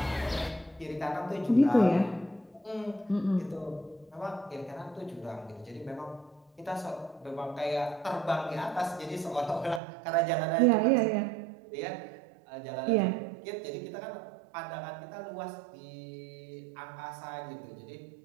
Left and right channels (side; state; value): left; drops out; at 9.8 s